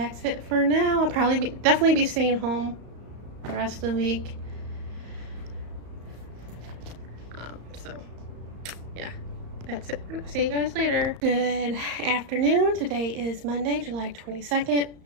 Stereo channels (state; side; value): late; left; 34 ms